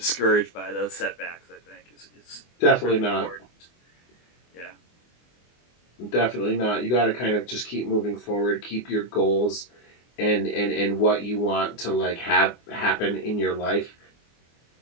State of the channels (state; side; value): late; right; 24 ms